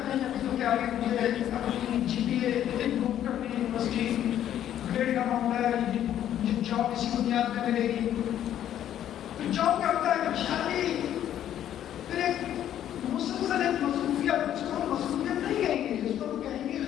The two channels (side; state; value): right; quieter; 11.0 dB